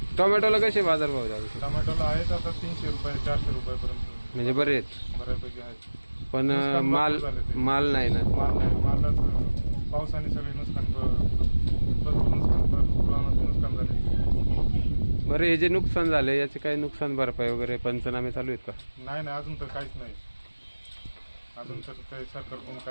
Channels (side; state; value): both; inverted; correlation -1.00